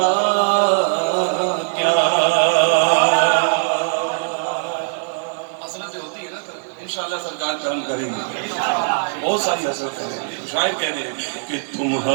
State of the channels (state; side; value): silent; left; digital silence